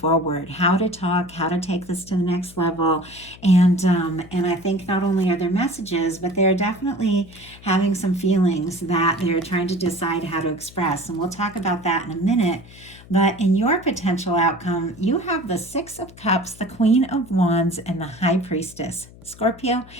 how to talk, how to take this to the next level. And I think not only are there messages, but they're definitely having some feelings that they're trying to decide how to express. And we'll talk about that in a minute. But in your potential outcome, you have the Six of Cups, the Queen of Wands, and the High Priestess. Scorpio,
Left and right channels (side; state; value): left; noise; hum, 21 dB below the sound